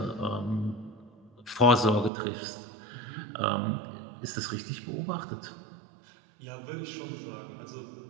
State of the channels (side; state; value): left; drops out; at 2.1 s